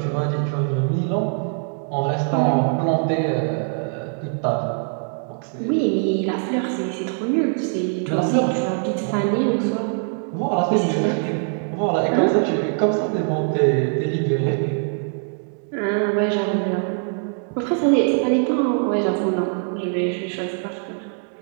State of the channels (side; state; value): left; silent; 55 dB below the other